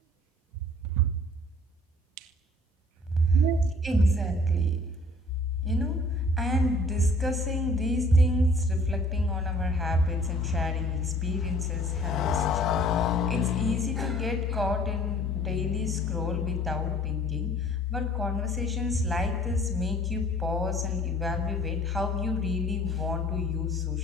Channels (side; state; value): both; normal; correlation 0.53